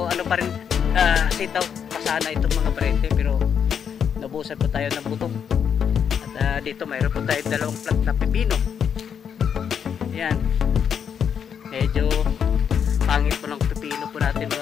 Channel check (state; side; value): quieter; right; 7.7 dB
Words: pa rin sitaw pasana itong mga paryente, pero nabusan po tayo ng buto. At dito mayroon po tayo 2 plant na pipino. Yan, medyo pangit po ng pipino po natin